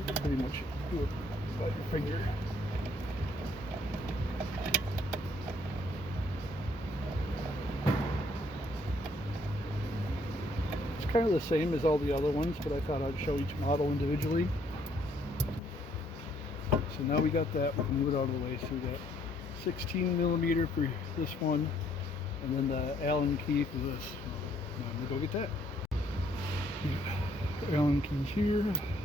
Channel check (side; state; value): both; normal; correlation 0.67